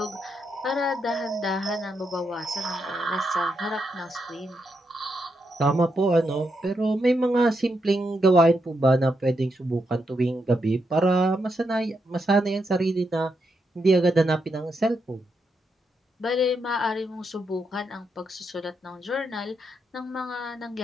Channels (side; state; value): both; normal; correlation 0.82